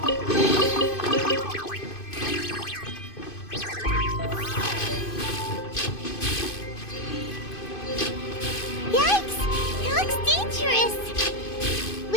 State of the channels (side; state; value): right; late; 2.5 ms